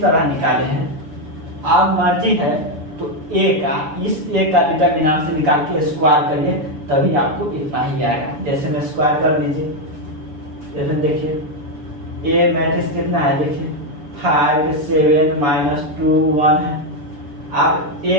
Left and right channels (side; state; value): left; late; 6.5 ms